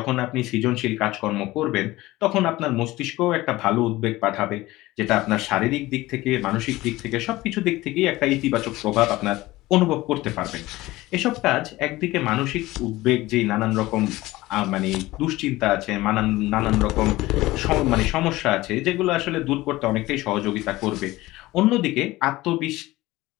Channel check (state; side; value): quieter; right; 18.5 dB